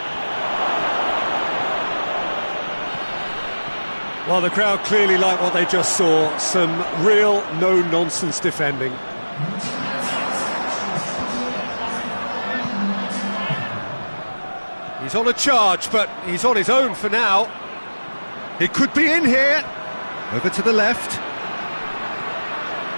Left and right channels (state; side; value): inverted; both; correlation -1.00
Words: Well, the crowd clearly like what they just saw. Some real no-nonsense defending. He's on a charge, but he's on his own for now. He could be in here. Over to the left.